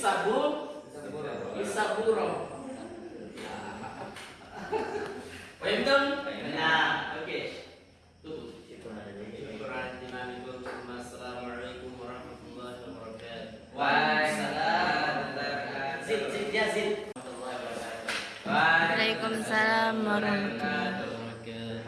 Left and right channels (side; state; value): both; identical; correlation 1.00